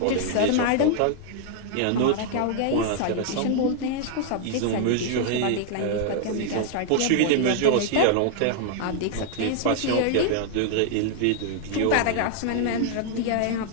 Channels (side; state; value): both; different; correlation 0.00